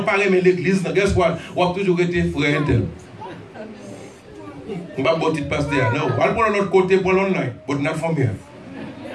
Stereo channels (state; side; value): identical; both; correlation 1.00